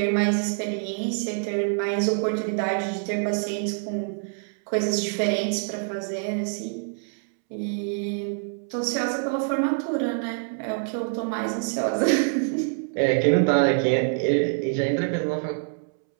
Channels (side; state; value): left; silent; 61 dB below the other